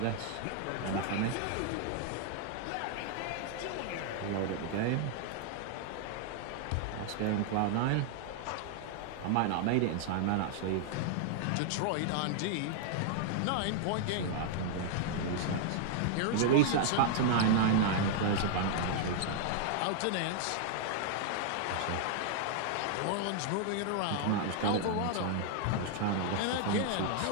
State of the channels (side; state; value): both; different; correlation 0.00